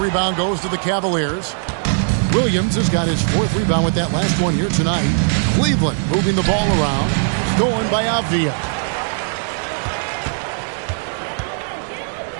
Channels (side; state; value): left; silent; 63 dB below the other